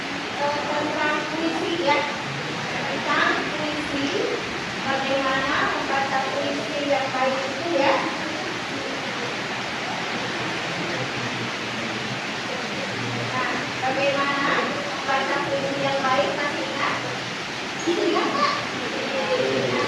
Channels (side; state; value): both; identical; correlation 1.00